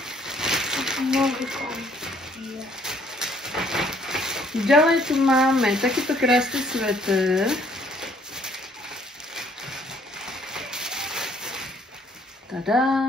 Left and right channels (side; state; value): both; normal; correlation 0.63